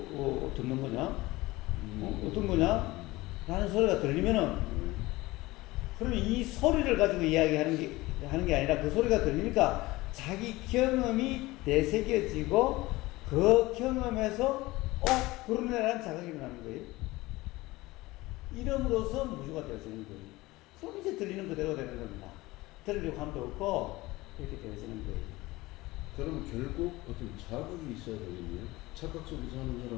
듣는 거냐? 어떤 거냐? 라는 소리가 들리면은 그러면 이 소리를 가지고 이야기하는 게 아니라 그 소리가 들리니까 자기 경험이 되새겨지고 그 경험에서 그러네라는 자각이 일어나는 거예요. 이름으로써 무주가 되어지는 거예요. 그럼 이제 들리는 그대로 되는 겁니다. 들으려고 함도 없고 이렇게 되어지는 거예요. 그러면 결국 어떤 자극이 있어야 되겠네요. 착각 속에 사는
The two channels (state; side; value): quieter; right; 20.0 dB